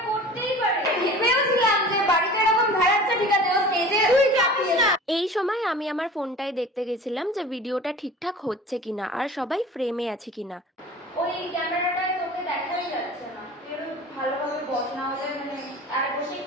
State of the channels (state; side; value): normal; both; correlation 0.40